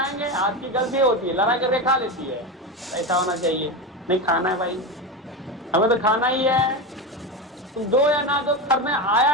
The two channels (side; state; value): both; normal; correlation 0.18